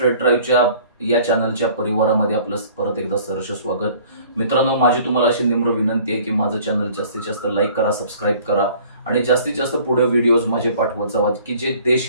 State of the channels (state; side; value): inverted; both; correlation -0.52